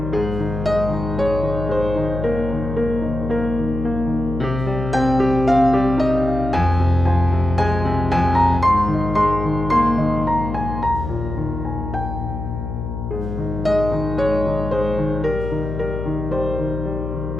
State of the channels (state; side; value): noise; left; hum, 5 dB below the sound